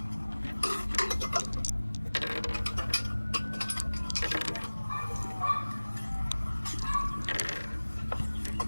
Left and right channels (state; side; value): inverted; both; correlation -1.00